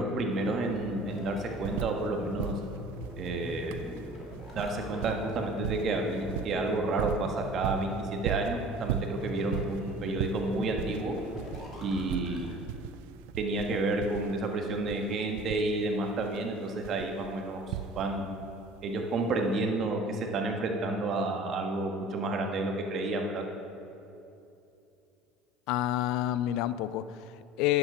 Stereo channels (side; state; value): both; normal; correlation 0.43